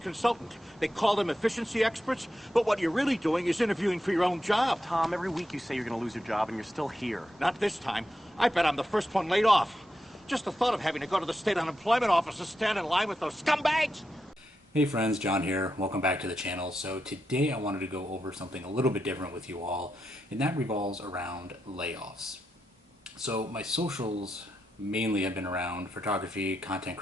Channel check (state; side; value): normal; both; correlation 0.86